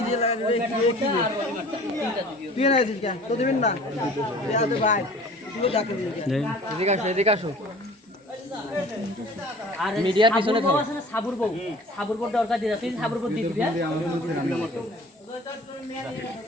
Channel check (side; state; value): both; normal; correlation 0.46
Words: তুই না আছিস কেন তো দিবেন না ভাই এদিকে আসো আর মিডিয়ার পিছনে থাকো সাবুর বউ দরকার দিয়ে তুই সাবুর বউ দিয়ে দিবি